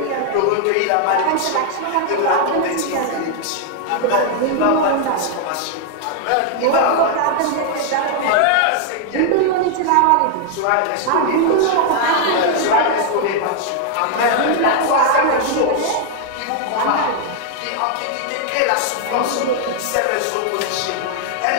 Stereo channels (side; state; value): both; different; correlation 0.00